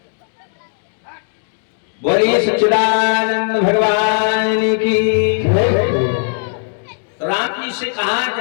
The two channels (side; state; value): right; silent; 68 dB below the other